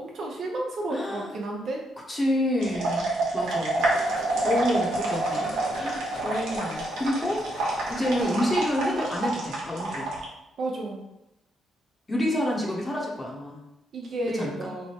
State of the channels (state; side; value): normal; both; correlation 0.78